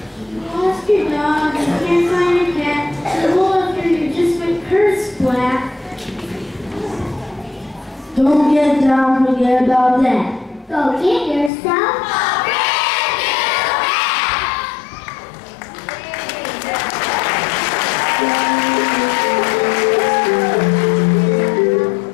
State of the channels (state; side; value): drops out; right; at 11.5 s